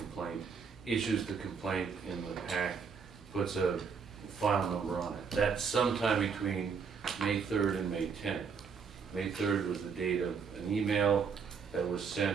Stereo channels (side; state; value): left; quieter; 6.0 dB